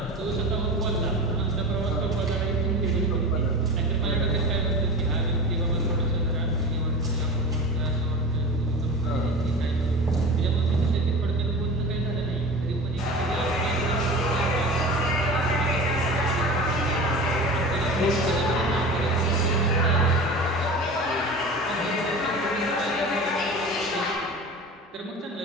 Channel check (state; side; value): normal; both; correlation 0.33